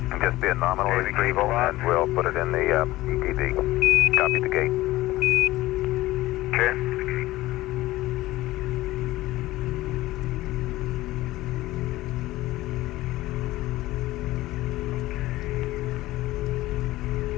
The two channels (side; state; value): right; quieter; 17.3 dB